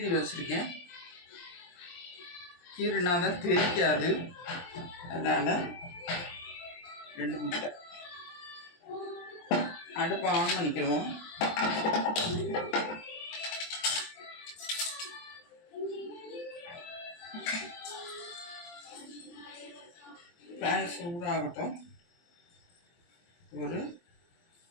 வச்சுருக்கேன். கீறினா தான் தெரிக்காது, அதனால் 2 முட்டை. அடுப்பை ஆன் பண்ணிக்கிறோம். பேன் சூடாகட்டும். ஒரு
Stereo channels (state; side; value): late; right; 23 ms